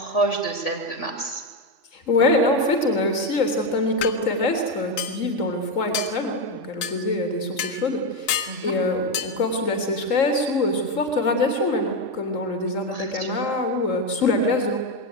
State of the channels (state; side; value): late; right; 3.8 ms